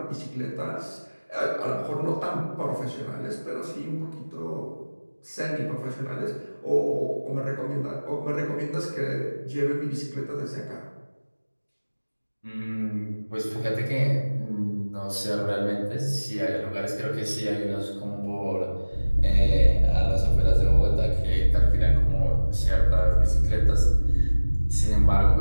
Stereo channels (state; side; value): inverted; both; correlation -1.00